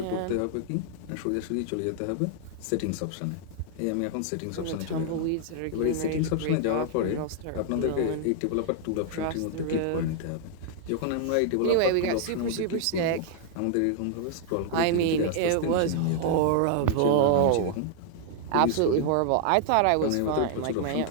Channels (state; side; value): different; both; correlation -0.01